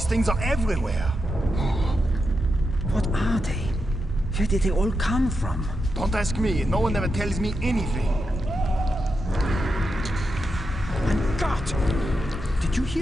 things are everywhere. What are they? Where did they all come from? Don't ask me, no one ever tells me anything. And God! Did you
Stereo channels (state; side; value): normal; both; correlation 0.86